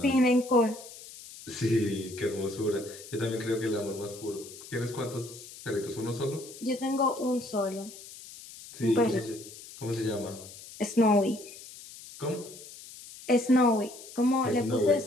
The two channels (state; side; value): noise; left; hiss, 16 dB below the sound